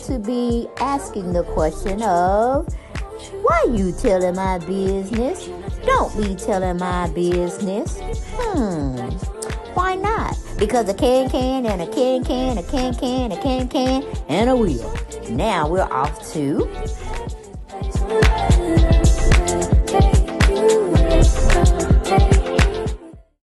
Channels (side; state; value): both; identical; correlation 1.00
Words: be asking the question of, why you telling my business? Don't be telling my business. Why not? Because a can and a can, a can, and a wheel. Now we're off to...